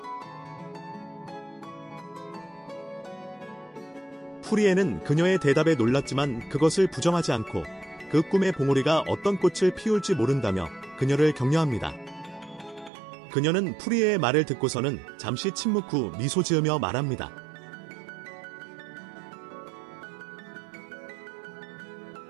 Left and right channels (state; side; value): drops out; left; at 12.9 s